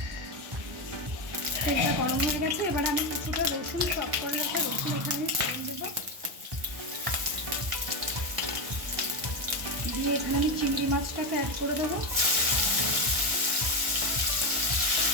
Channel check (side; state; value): left; late; 1.1 ms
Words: তেলটা গরম হয়ে গেছে, এবার আমি কিছুটা রসুন, চপ করে রাখা রসুন এখানে ফোড়ন দেবো। দিয়ে এখানে আমি চিংড়ি মাছটাকে অ্যাড করে দেবো।